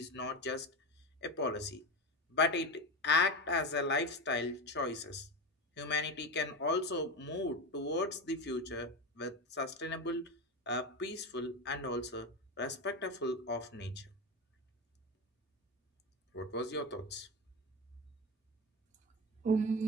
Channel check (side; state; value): both; normal; correlation 0.19